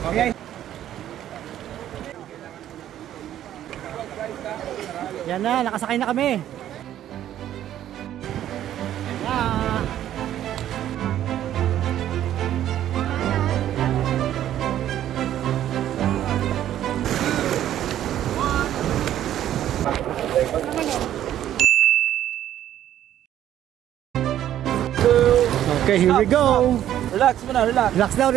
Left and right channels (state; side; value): quieter; left; 11.7 dB